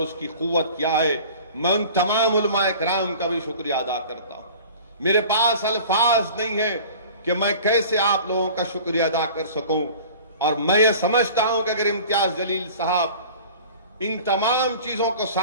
उसकी कुव्वत क्या है। मैं उन तमाम उलमाए कराम का भी शुक्रिया अदा करता हूं। मेरे पास अल्फाज नहीं है कि मैं कैसे आप लोगों का शुक्रिया अदा कर सकूं, और मैं ये समझता हूं कि अगर इम्तियाज जलील साहब इन तमाम चीजों को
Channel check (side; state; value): both; inverted; correlation -0.43